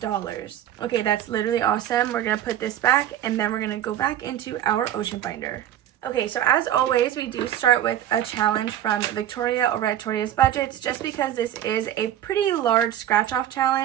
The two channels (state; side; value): quieter; left; 11.5 dB